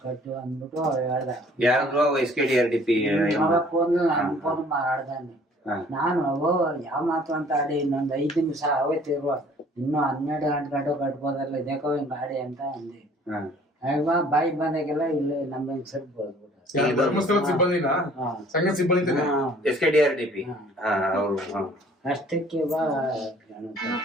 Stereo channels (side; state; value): both; normal; correlation 0.55